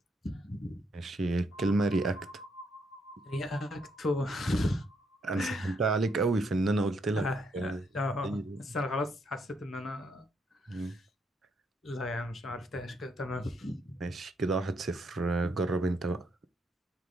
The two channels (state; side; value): normal; both; correlation 0.74